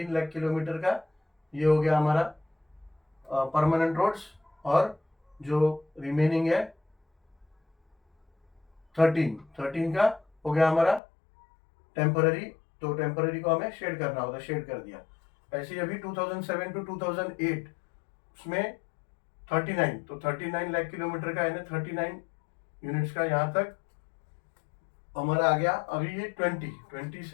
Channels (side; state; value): right; drops out; at 11.0 s